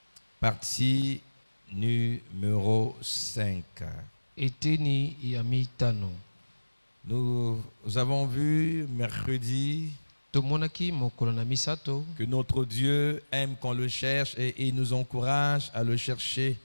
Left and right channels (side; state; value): both; inverted; correlation -1.00